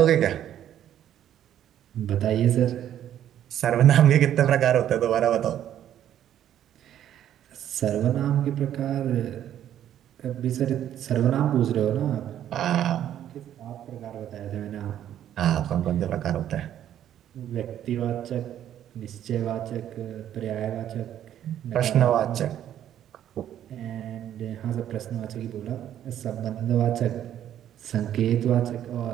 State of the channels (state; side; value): quieter; left; 10.9 dB